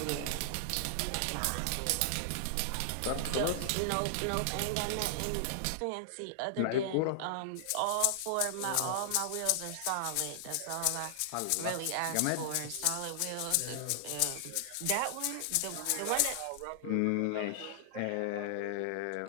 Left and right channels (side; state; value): both; different; correlation -0.01